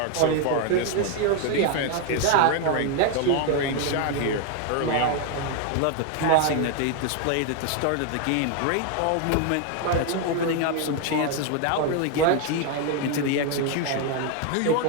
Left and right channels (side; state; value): both; different; correlation 0.01